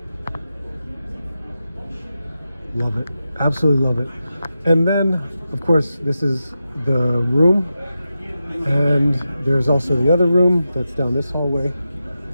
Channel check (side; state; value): both; inverted; correlation -0.90